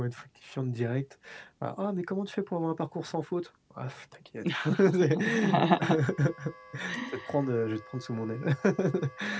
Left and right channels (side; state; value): both; identical; correlation 1.00